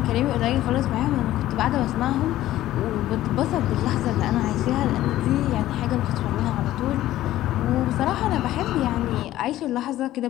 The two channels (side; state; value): right; quieter; 14.4 dB